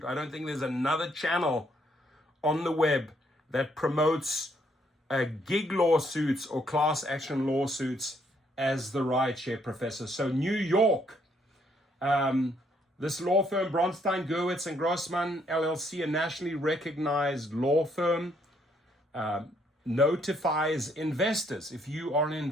I don't think there's another channel on the web that promotes gig lawsuits or class action lawsuits as the Rideshare professor. So New York, this law firm, Bronstein, Gewirtz and Grossman LLC, a nationally recognized law firm, notifies investors, if you are an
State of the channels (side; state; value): both; normal; correlation 0.70